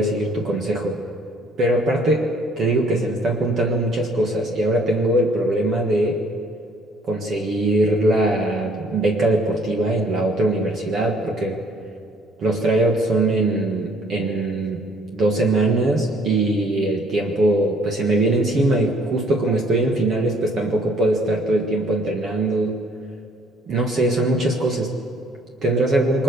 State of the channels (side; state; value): both; normal; correlation 0.60